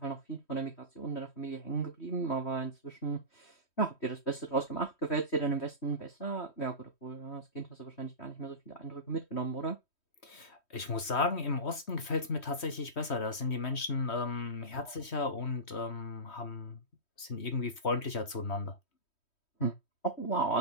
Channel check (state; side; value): late; right; 3.1 ms